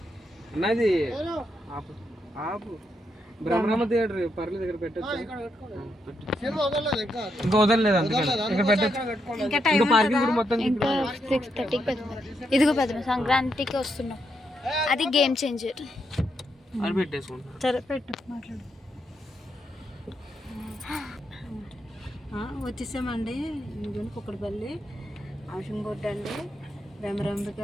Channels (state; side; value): normal; both; correlation 0.80